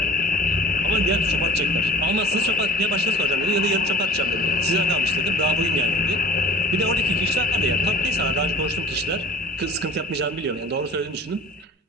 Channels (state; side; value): normal; both; correlation 0.44